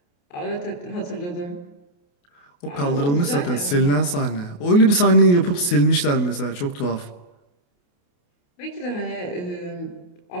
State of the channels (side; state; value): right; late; 28 ms